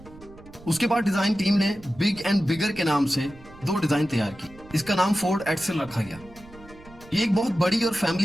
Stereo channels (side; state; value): right; noise; rumble, 22 dB below the sound